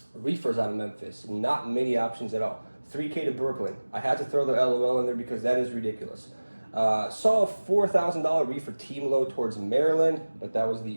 Reefers out of Memphis, not many options at all. 3K to Brooklyn. I had to throw the LOL in there because that is ridiculous. Saw a $4,000 reefer team load towards Maryland, but that was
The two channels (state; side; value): inverted; both; correlation -1.00